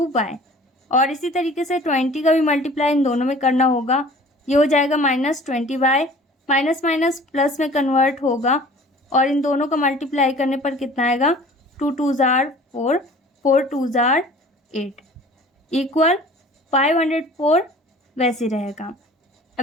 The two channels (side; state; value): both; normal; correlation 0.47